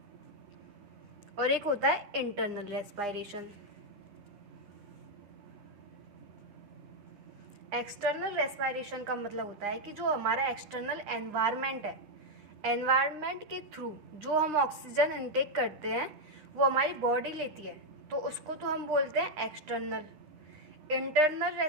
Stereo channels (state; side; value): late; left; 9.8 ms